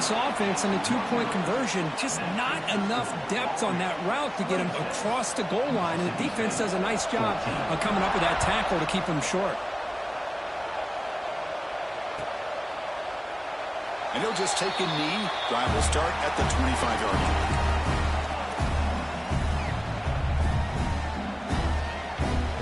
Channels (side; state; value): both; identical; correlation 1.00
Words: offense on the 2-point conversion. Just not enough depth on that route to get him across the goal line. And the defense does a nice job of coming up with that tackle to keep him short. And he'll just take a knee. Drive will start at the 25-yard line.